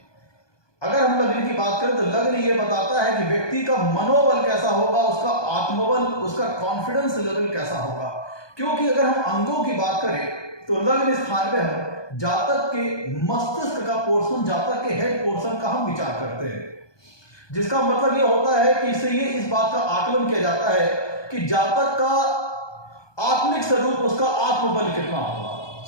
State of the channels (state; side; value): late; right; 1.2 ms